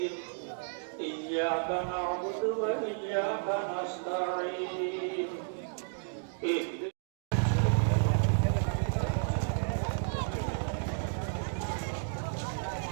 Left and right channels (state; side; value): silent; left; digital silence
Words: إياك نعبد وإياك نستعين